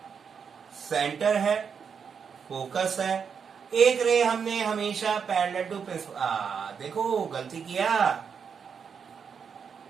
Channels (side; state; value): left; quieter; 6.6 dB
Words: सेंटर है, फोकस है। एक रे हमने हमेशा पैरेलल टू प्रिंसिपल, देखो गलती किया।